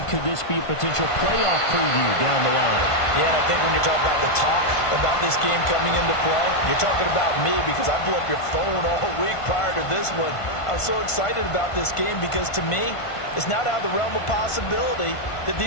Could this be a potential playoff preview down the line? Yeah, and I think when you talk about the talk about this game coming into play, you're talking about me because I blew up your phone all week prior to this one. I was so excited about this game because to me, it's not out of the realm of possibility that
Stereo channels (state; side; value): late; right; 1.5 ms